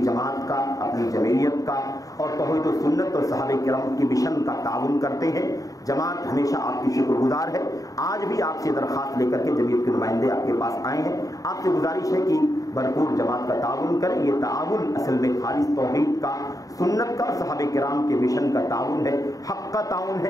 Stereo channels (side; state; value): right; late; 0.17 ms